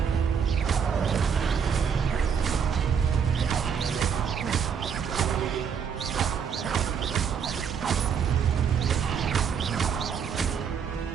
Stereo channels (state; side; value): quieter; left; 7.1 dB